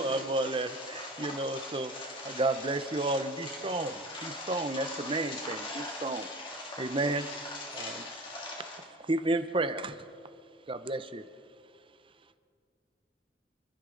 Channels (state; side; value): normal; both; correlation 0.37